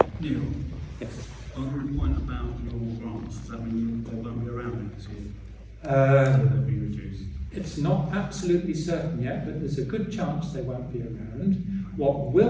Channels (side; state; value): both; identical; correlation 1.00